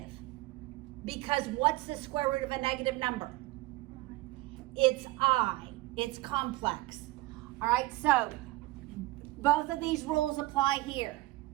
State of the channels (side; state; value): left; quieter; 20.2 dB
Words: because what's the square root of a negative number? It's I. It's complex. All right, so both of these rules apply here,